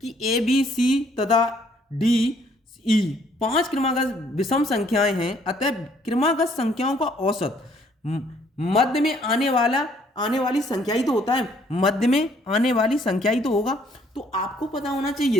कि ए बी सी तथा डी ई 5 क्रमागत विषम संख्याएं हैं, अतः क्रमागत संख्याओं का औसत मध्य में आने वाली संख्या ही तो होता है, मध्य में आने वाली संख्या ही तो होगा। तो आपको पता होना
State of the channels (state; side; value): normal; both; correlation 0.64